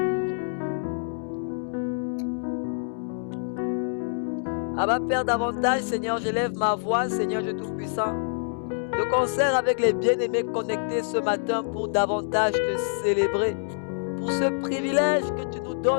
Abba Père, davantage, Seigneur, j'élève ma voix, Seigneur Dieu Tout-Puissant, de concert avec les bien-aimés connectés ce matin pour davantage te célébrer, pour ce privilège que tu nous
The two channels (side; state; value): right; silent; digital silence